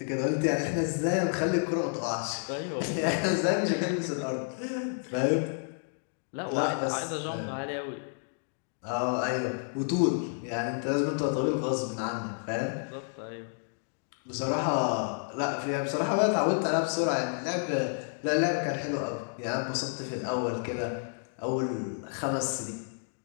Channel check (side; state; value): right; silent; digital silence